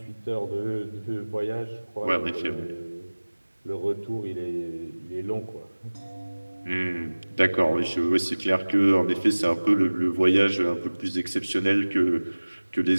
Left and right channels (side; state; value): both; inverted; correlation -1.00